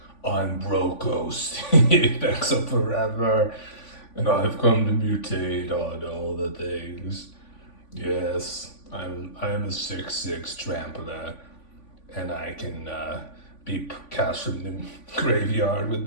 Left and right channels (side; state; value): right; late; 3.5 ms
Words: I'm Brokkos, thanks up forever, and I've come to mutate on all the things. Yes, I am a 6/6 trampler, and I can be cast from the graveyard